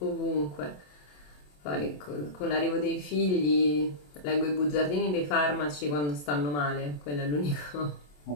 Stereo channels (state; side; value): late; right; 27 ms